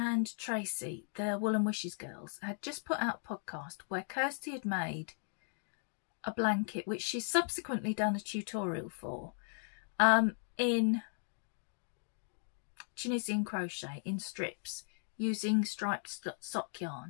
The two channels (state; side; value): silent; right; 53 dB below the other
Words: Tracy, the Wool and Wishes girls, had just put out a podcast where Kirsty had made a blanket, which she's subsequently done a tutorial for, in Tunisian crochet in strips using striped sock